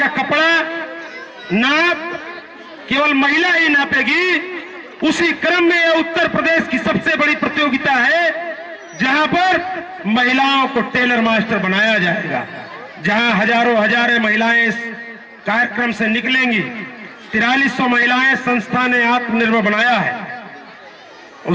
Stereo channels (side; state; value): both; identical; correlation 1.00